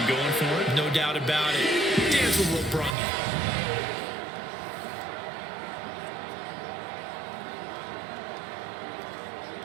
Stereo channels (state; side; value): drops out; left; at 3.0 s